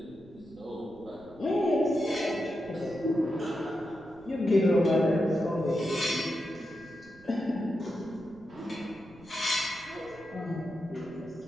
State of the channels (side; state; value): right; noise; rumble, 24 dB below the sound